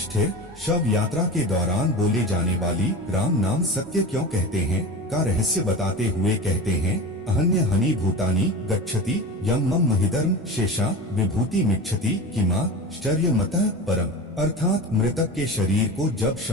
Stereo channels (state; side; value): normal; both; correlation 0.30